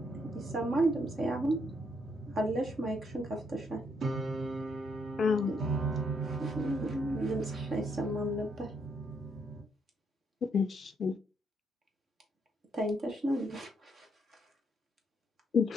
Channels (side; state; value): both; normal; correlation 0.74